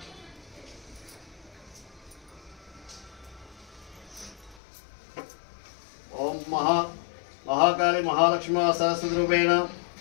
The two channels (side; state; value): right; drops out; at 4.6 s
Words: ओम महाकाली महालक्ष्मी सरस्वती रूपेण